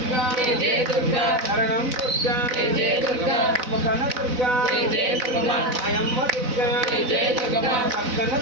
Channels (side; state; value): left; late; 4.0 ms